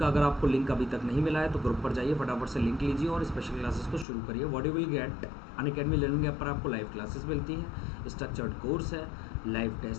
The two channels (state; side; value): drops out; right; at 4.0 s